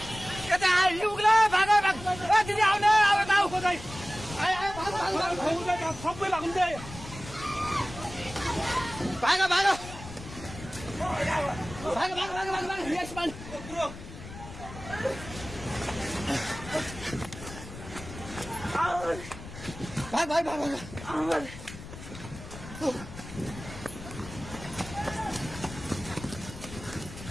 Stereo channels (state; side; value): noise; left; rumble, 13 dB below the sound